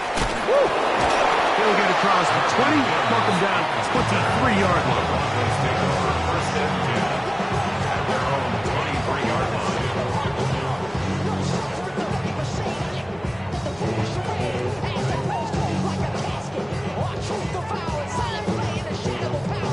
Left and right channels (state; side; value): noise; left; hum, 23 dB below the sound